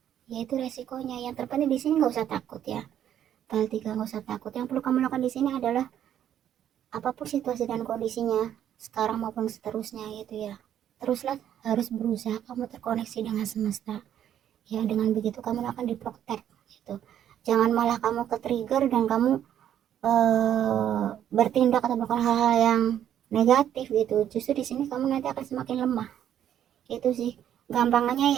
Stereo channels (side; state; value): left; quieter; 10.4 dB